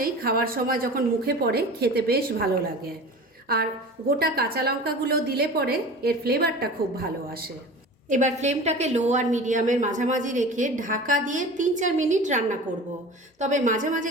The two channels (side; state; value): both; normal; correlation 0.37